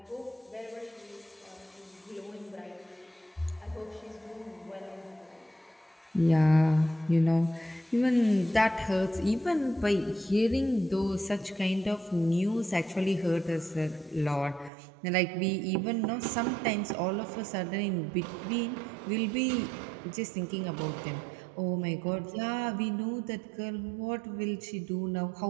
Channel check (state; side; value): drops out; left; at 14.7 s